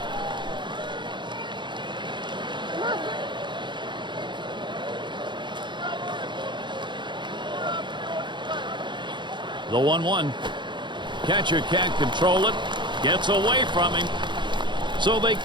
The 1-1. Catcher can't control it. Gets away from him. So they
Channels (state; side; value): late; left; 0.23 ms